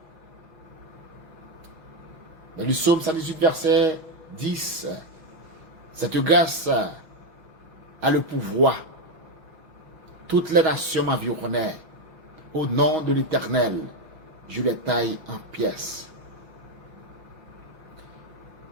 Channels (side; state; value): left; late; 5.9 ms